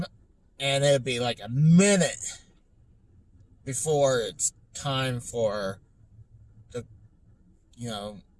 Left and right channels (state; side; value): identical; both; correlation 1.00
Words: and it'll be like a minute before it's time for the,